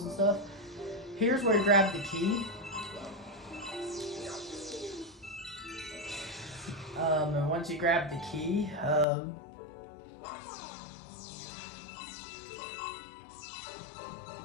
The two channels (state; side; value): drops out; right; at 9.1 s